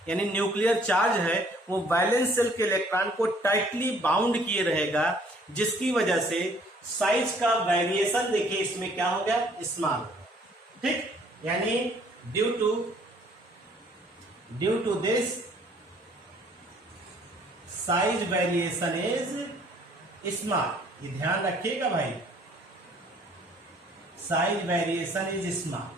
यानी न्यूक्लियर चार्ज है, वो वैलेंस सेल के इलेक्ट्रॉन को टाइटली बाउंड किए रहेगा, जिसकी वजह से साइज का वेरिएशन देखिए इसमें क्या हो गया, स्मॉल, ठीक, यानी due to this size variation is small. ये ध्यान रखिएगा भाई, साइज वेरिएशन इज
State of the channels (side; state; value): both; normal; correlation 0.59